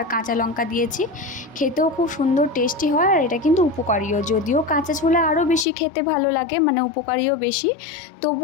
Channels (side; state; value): right; drops out; at 5.7 s